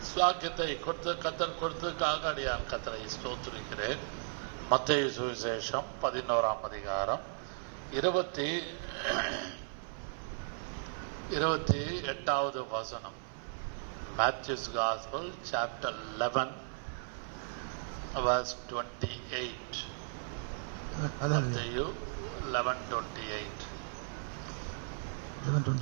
சாக்கியத்தை கர்த்தர் கொடுத்ததுக்காக அடியான் கர்த்தரை ஸ்தோத்திரிக்கிறேன். மத்தேயு சுவிசேஷம் 11ஆம் அதிகாரம் 28வது வசனம். Matthew's Gospel, chapter 11, verse 28. Matthew 11:28.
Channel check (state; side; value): silent; left; 54 dB below the other